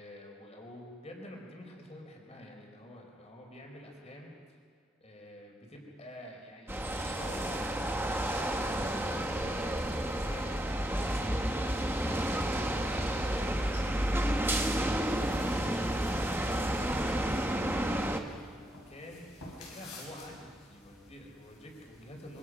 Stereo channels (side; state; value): both; normal; correlation 0.79